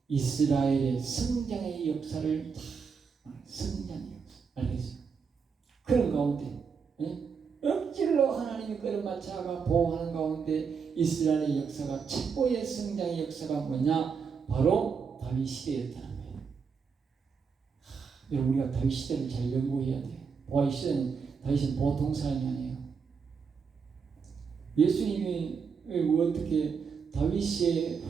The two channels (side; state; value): left; quieter; 5.9 dB